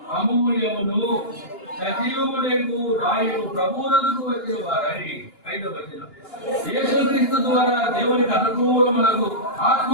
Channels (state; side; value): late; right; 2.9 ms